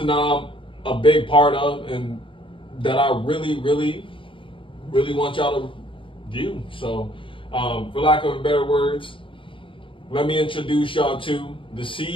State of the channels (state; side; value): late; right; 0.25 ms